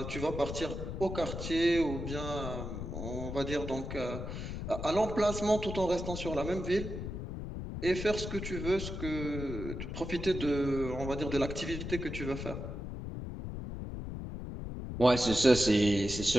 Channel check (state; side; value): noise; left; rumble, 6 dB below the sound